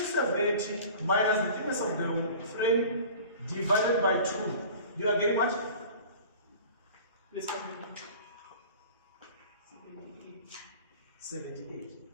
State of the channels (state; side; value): inverted; both; correlation -0.42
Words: minus the thickness of the frame divided by 2. You are getting what? Please come in. 78.